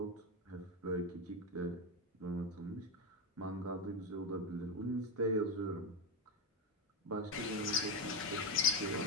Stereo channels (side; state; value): both; normal; correlation 0.10